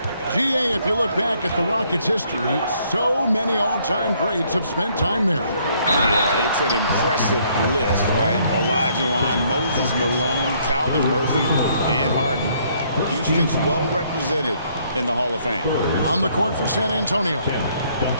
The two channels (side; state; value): both; inverted; correlation -0.66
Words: GA, if you look back at the Rockets' history, so many all-time greats have spent time there. Yeah, it's an impressive list, right? Olajuwon, Moses Malone, Calvin Murphy, and Harden. Houston's well represented in the Hall of Fame. On the court for San Antonio.